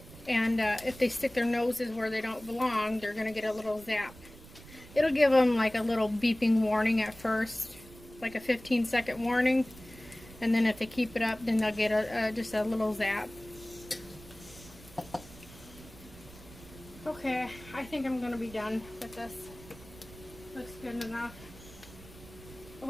and if they stick their noses where they don't belong, they're gonna get a little zap. It'll give them like a little beeping warning at first, like a 15-second warning. And then if they keep it up, then they'll get just a little zap. Okay, I think I'm going to be done with this. Looks good enough. I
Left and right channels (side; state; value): right; noise; rumble, 19 dB below the sound